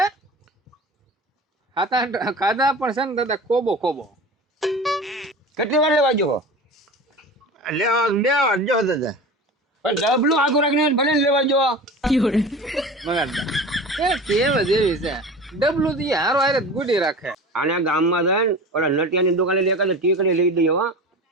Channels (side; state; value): both; normal; correlation 0.34